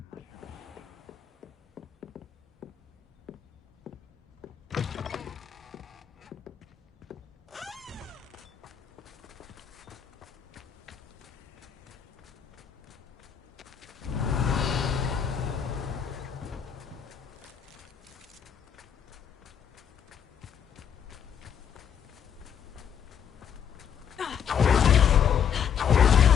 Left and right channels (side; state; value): right; quieter; 8.1 dB